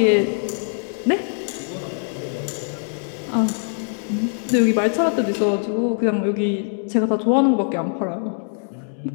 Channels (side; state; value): right; silent; 64 dB below the other